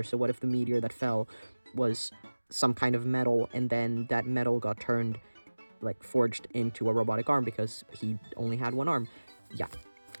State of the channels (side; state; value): both; inverted; correlation -1.00